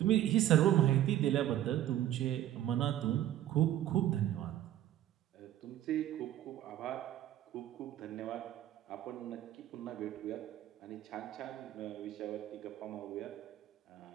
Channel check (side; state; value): left; quieter; 12.6 dB